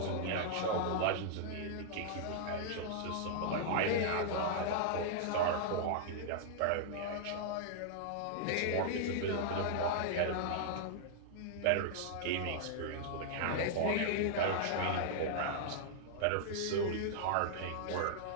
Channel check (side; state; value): both; different; correlation -0.01